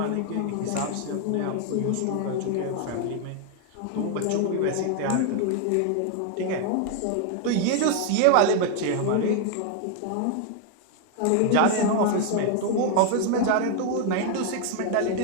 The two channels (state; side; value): different; both; correlation 0.00